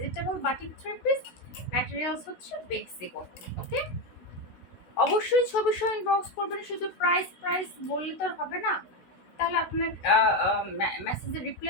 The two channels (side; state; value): right; late; 16 ms